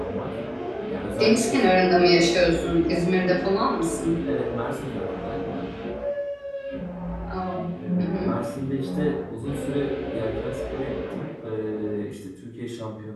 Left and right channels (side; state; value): both; identical; correlation 1.00